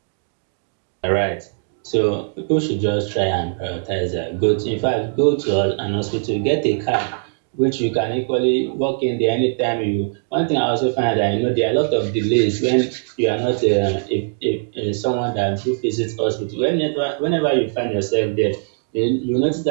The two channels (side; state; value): left; silent; digital silence